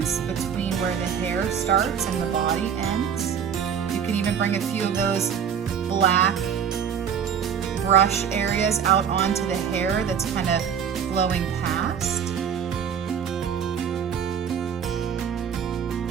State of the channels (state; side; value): quieter; left; 7.7 dB